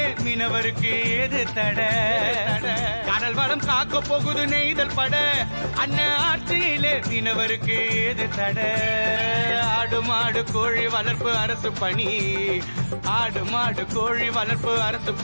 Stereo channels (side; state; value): both; inverted; correlation -1.00